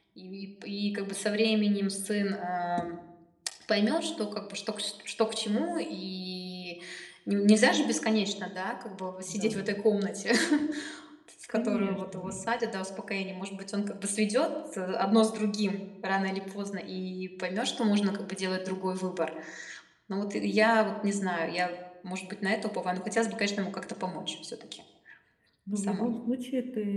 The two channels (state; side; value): identical; both; correlation 1.00